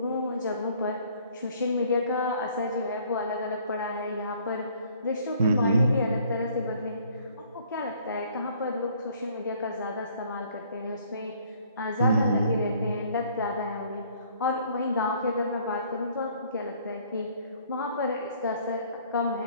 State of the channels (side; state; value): both; inverted; correlation -0.59